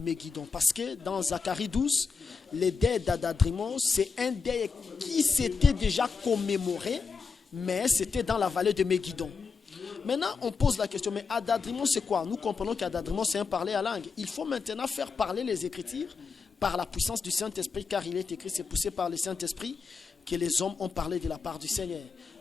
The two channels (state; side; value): quieter; right; 5.1 dB